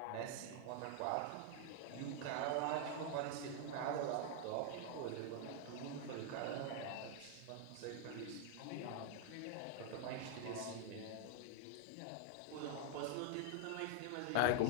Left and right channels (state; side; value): different; both; correlation 0.00